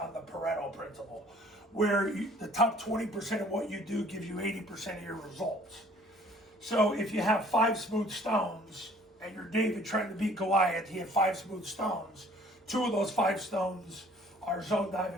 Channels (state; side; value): normal; both; correlation 0.55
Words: the Pareto principle, where the top 20% of what you do gives you 80% of your results. So if you have 5 smooth stones and you're David trying to beat Goliath, he had 5 smooth stones. 2 of those 5 stones are zone dive